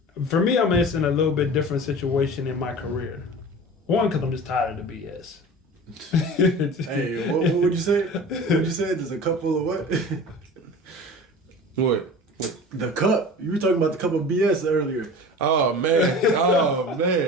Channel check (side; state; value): both; normal; correlation 0.37